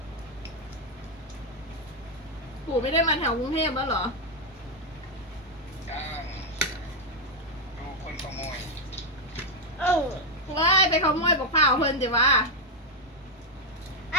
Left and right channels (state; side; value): normal; both; correlation 0.01